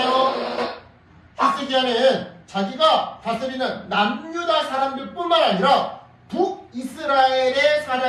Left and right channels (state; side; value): identical; both; correlation 1.00